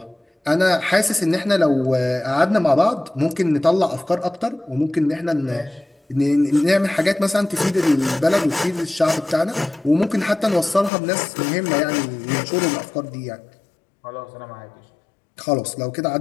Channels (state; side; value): drops out; right; at 10.9 s